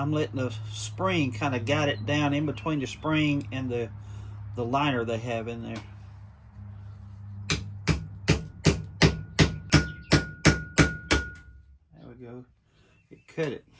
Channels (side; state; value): both; identical; correlation 1.00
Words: letting the spring kind of guide it down in between the spring and the liner they have in there. There we go. It cut it.